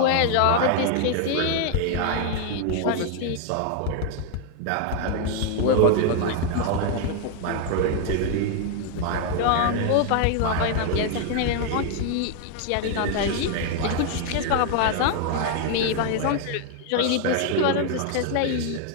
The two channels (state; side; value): different; both; correlation 0.00